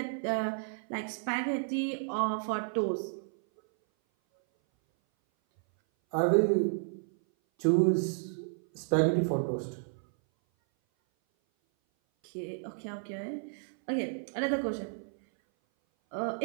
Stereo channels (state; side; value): silent; left; 57 dB below the other